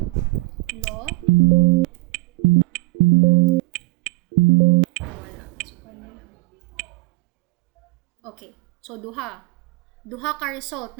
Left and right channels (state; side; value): quieter; left; 23.4 dB